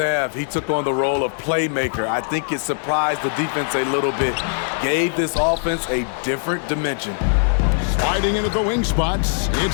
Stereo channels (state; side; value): silent; right; digital silence